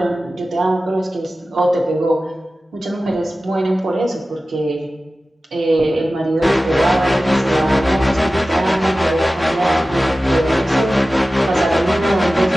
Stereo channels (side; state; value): both; normal; correlation 0.95